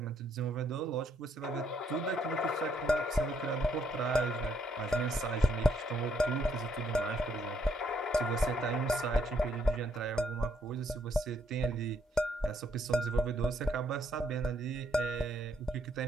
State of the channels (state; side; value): normal; both; correlation 0.71